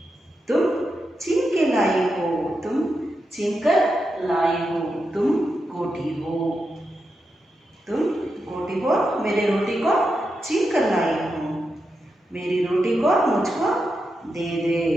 तुम छीन के लाई हो, तुम छीन कर लाई हो, तुम गोटी हो। तुम गोटी हो, मेरे रोटी को छीन कर लाई हो। मेरी रोटी को मुझको दे दे,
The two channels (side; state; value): both; normal; correlation 0.87